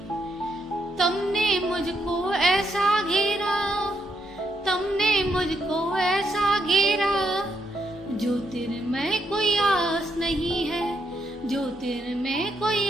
तुमने मुझको ऐसा घेरा, तुमने मुझको ऐसा घेरा, जो तेरे में कोई आस नहीं है, जो तेरे में कोई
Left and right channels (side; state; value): both; normal; correlation 0.78